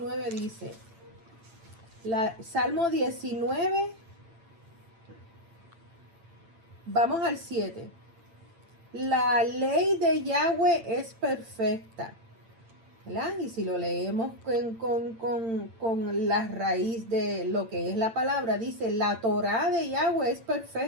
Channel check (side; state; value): left; late; 8.9 ms